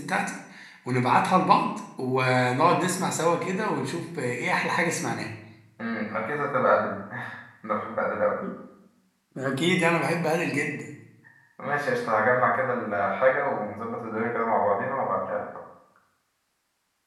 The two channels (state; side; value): identical; both; correlation 1.00